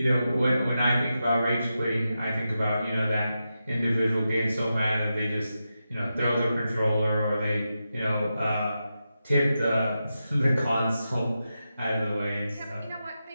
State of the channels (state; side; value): inverted; both; correlation -0.89